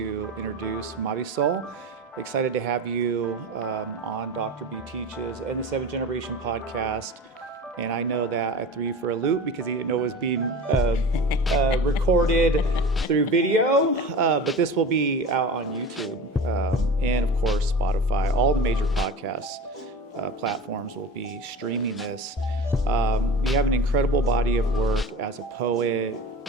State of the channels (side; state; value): both; normal; correlation 0.33